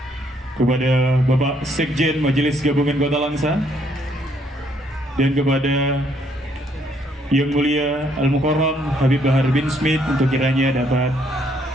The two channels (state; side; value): normal; both; correlation 0.69